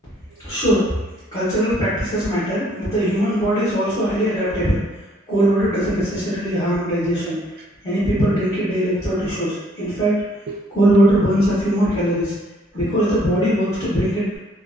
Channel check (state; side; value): normal; both; correlation 0.64